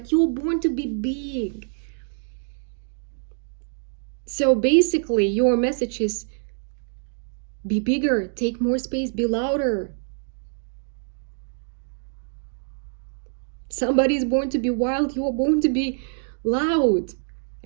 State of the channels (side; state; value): left; silent; digital silence